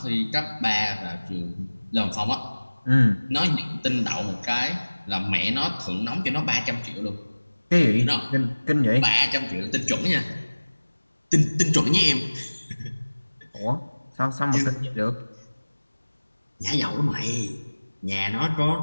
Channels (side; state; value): both; inverted; correlation -1.00